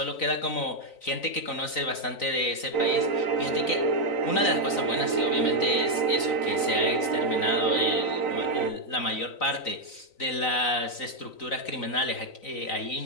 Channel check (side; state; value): right; late; 3.9 ms